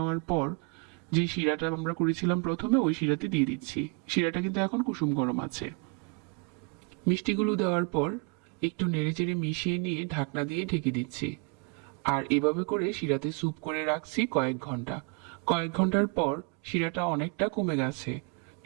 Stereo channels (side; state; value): left; quieter; 34.1 dB